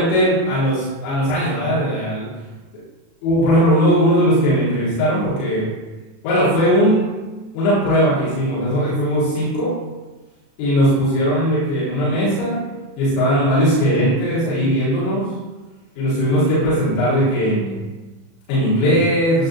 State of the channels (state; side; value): late; right; 36 ms